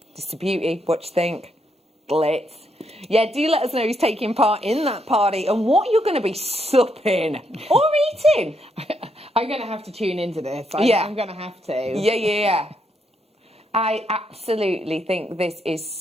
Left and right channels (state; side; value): normal; both; correlation 0.77